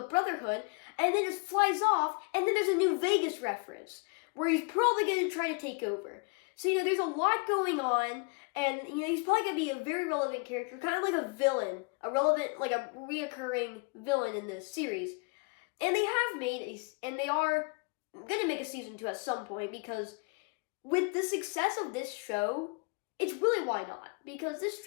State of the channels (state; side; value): quieter; right; 32.2 dB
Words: Brotherhood, and then just flies off, and then there's a New Vegas reference, where he's probably going to try to take over. So, there's a lot going on, and, he's probably going to be a very relevant character, kind of like a villain, a reoccurring villain in this series. And they are going to make a season 2 at some point, because with the success of this show, it's really why not, because this